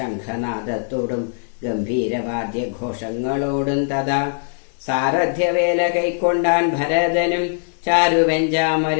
ഗംഭീരവാദ്യഘോഷങ്ങളോടും. തഥാ സാരഥ്യവേല കൈക്കൊണ്ടാൻ ഭരതനും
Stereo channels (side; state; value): right; silent; 65 dB below the other